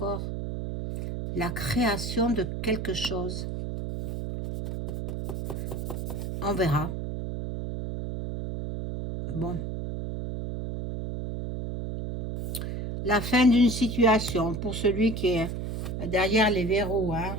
La création de quelque chose. On verra. Bon. La fin d'une situation pour celui qui est derrière les verrous. Hein.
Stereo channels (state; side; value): noise; right; hum, 5 dB below the sound